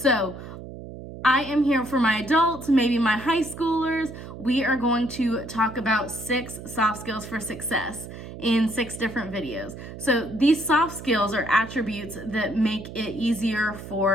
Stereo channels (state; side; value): noise; right; hum, 12 dB below the sound